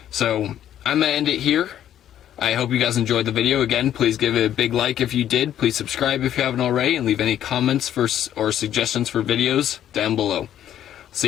So I'm gonna end it here. I hope you guys enjoyed the video. Again, please give it a big like if you did. Please subscribe if you haven't already, and leave any comments or suggestions for videos down below.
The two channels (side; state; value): right; quieter; 11.0 dB